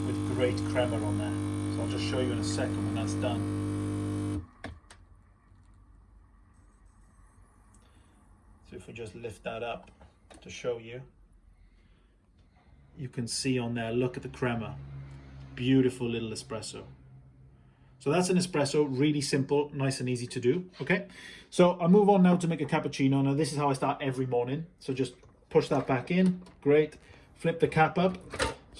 with great crema on there. So I'll just show you in a second when that's done. So if we just lift that up to show you, you can see on there, look at the crema. Beautiful little espresso. So that's an espresso, really simple, nice and easy to do, okay? So I'll move on now to make a cappuccino. Now this is how I start every morning. So just push that back in, great. Flip the cap up,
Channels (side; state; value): both; identical; correlation 1.00